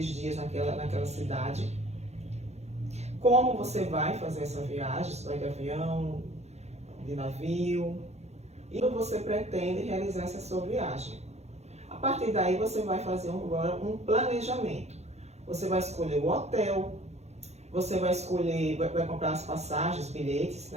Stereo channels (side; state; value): left; late; 0.32 ms